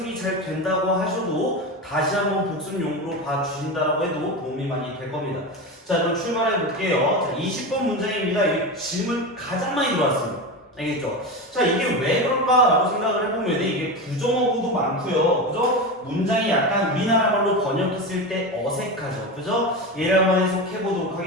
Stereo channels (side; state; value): both; normal; correlation 0.21